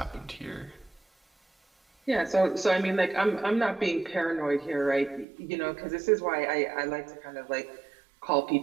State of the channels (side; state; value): left; drops out; at 5.2 s